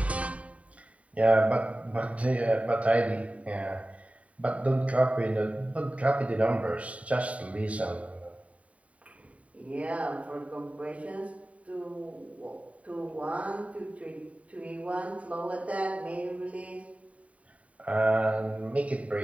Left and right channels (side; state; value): left; late; 0.067 ms